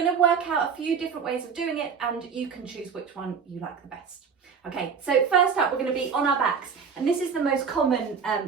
to work out a few different ways of doing it and you can choose which one you like the best. Okay, so first up we're going to be on our backs, and this is the most common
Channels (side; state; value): left; quieter; 6.3 dB